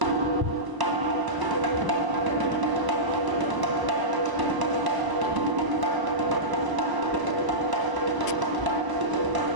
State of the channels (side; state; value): left; late; 1.0 ms